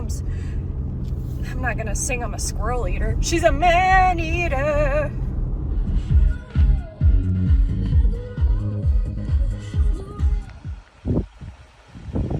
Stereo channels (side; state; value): both; identical; correlation 1.00